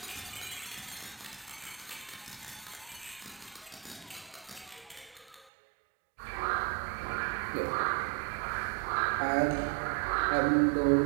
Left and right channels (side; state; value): left; drops out; at 5.5 s